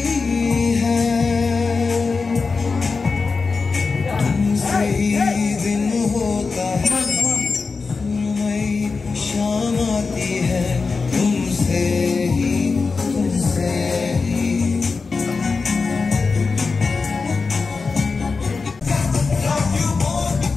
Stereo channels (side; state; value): right; quieter; 4.5 dB